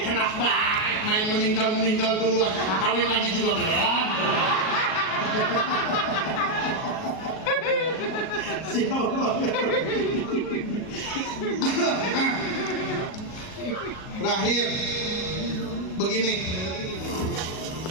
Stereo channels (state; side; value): late; right; 37 ms